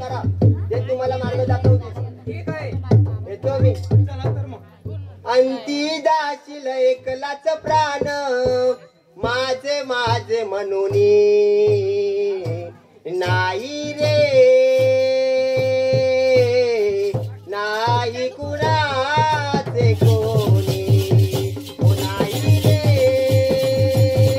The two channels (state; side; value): identical; both; correlation 1.00